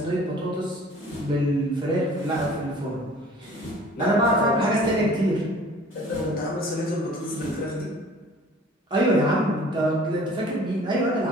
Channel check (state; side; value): normal; both; correlation 0.49